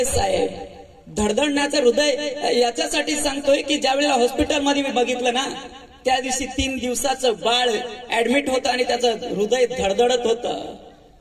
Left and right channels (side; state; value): both; identical; correlation 1.00